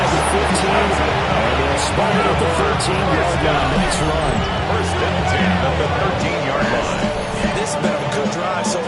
the 15. And they'll spot it at the 13-yard line. Nice run. 1st and 10 at the 13-yard line. This has been a good drive so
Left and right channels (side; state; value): both; identical; correlation 1.00